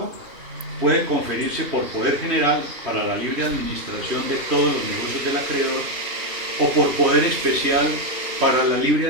puede conferirse por poder general para la libre administración de todos los negocios del acreedor o por poder especial para la libre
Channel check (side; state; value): left; late; 3.2 ms